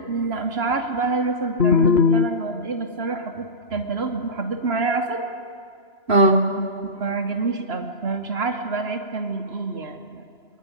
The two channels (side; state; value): left; late; 3.0 ms